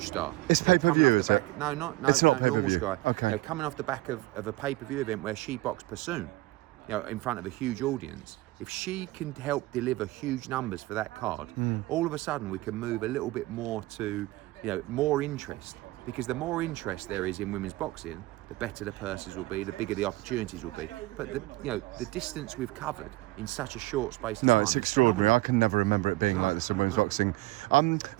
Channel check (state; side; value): quieter; left; 20.1 dB